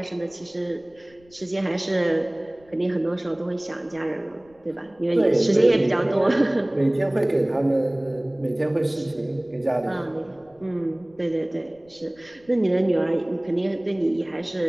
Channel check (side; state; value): left; noise; rumble, 30 dB below the sound